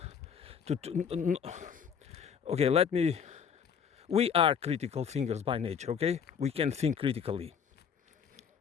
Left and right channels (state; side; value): quieter; right; 7.2 dB